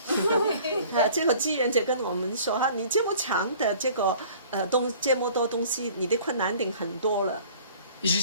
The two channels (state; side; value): inverted; both; correlation -0.50